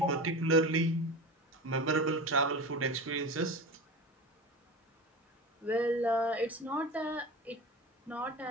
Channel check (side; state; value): both; normal; correlation 0.30